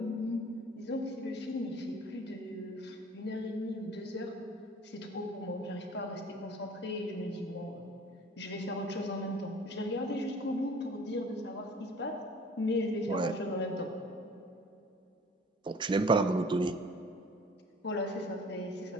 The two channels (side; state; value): both; normal; correlation 0.49